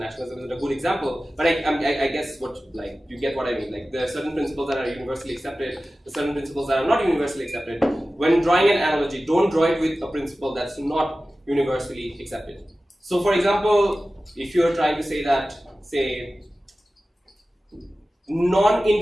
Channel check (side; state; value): both; normal; correlation 0.96